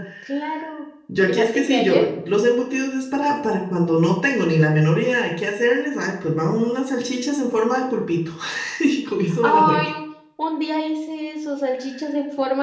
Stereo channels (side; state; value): both; identical; correlation 1.00